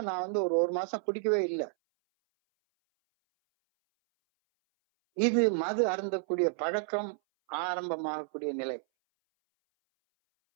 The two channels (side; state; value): left; silent; 57 dB below the other